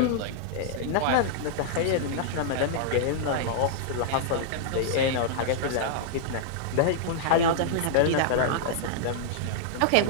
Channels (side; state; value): both; different; correlation -0.01